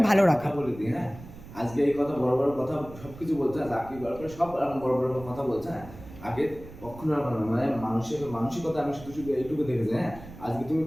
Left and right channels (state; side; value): noise; right; rumble, 16 dB below the sound